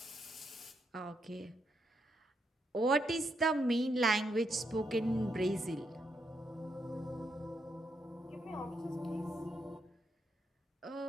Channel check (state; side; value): normal; both; correlation 0.80